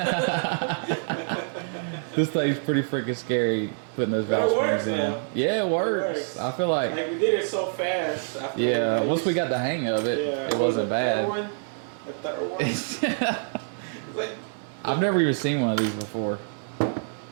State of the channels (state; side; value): silent; left; digital silence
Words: This thing's pretty freaking scary putting those valve springs in. Yeah, it works. I feel like we did it so fast. yeah, once we got the hang of it, it wasn't bad. The third one. I've never even seen one of these before.